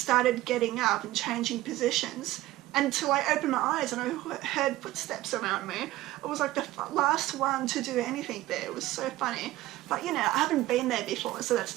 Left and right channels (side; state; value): left; quieter; 16.5 dB